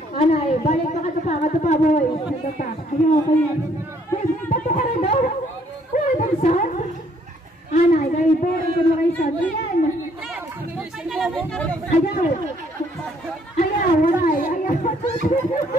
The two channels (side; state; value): both; normal; correlation 0.65